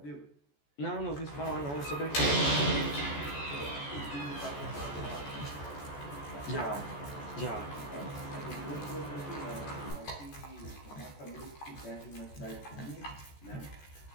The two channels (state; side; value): late; right; 14 ms